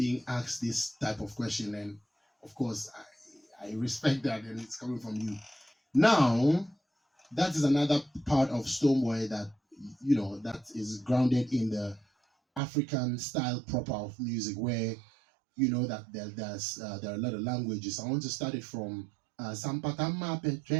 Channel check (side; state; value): left; drops out; at 12.6 s